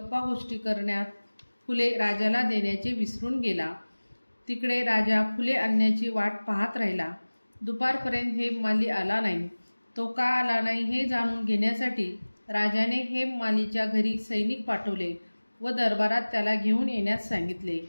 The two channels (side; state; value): both; inverted; correlation -1.00